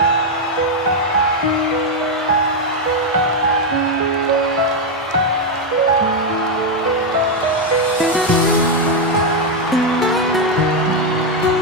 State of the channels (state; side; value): normal; both; correlation 0.03